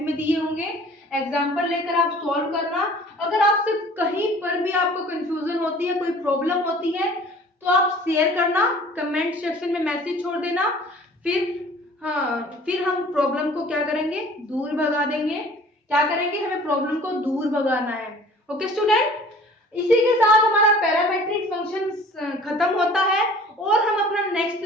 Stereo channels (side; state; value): both; normal; correlation 0.48